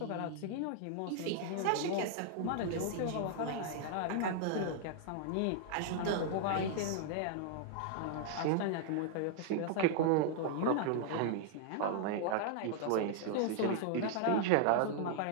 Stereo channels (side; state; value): both; different; correlation -0.01